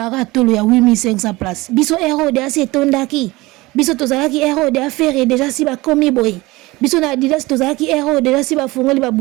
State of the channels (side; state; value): left; quieter; 21.0 dB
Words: aratolo ya 8500 places. Biso Aero de assez tondaki. Biso tozalaki Aero de affaire déjà si ba komi boy. Biso na Adidas tozalaki Aero déjà si ba fungoli ba